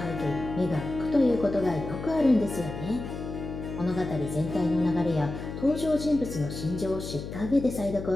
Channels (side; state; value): left; noise; hum, 8 dB below the sound